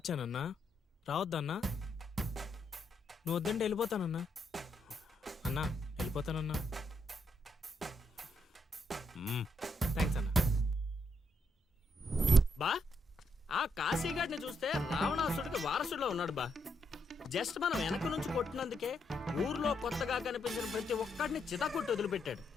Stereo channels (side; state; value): both; normal; correlation 0.78